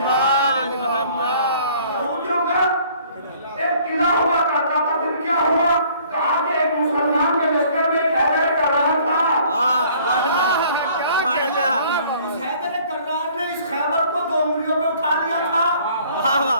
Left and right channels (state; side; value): inverted; both; correlation -0.57